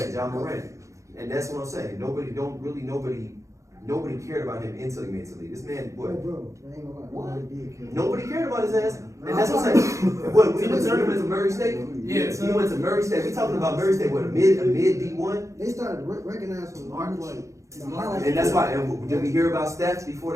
John Morant. And that's what I'm saying. Nobody cared about him until he made the league. This man, Bro, I ain't gonna lie. What? Nobody did care. Nobody cared about his ass. And that's what I'm saying. What, we returned him to Murray State? Yeah. He went to Murray State. We talking about Murray State, what, a mid D1? They started recognizing him like the highlight. And that's why, and did we hear about stats before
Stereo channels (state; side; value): late; left; 0.15 ms